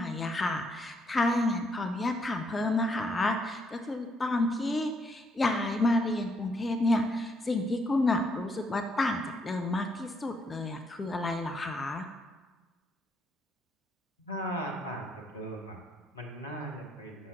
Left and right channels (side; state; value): both; normal; correlation 0.74